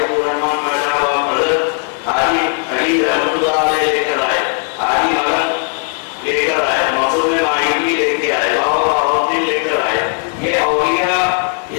अब्दुर्रहमान माशाबाब मदद, हाजी अली रहमतुल्लाह अलैह लेकर आए, हाजी मलक लेकर आए, मखदूम मायूनी लेके आए, बाबा बाहुद्दीन लेकर आए, ये औलिया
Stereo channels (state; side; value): quieter; right; 39.6 dB